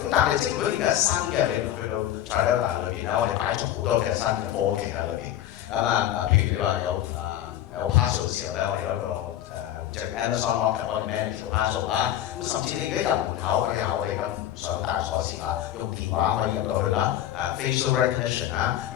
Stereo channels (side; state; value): right; quieter; 12.1 dB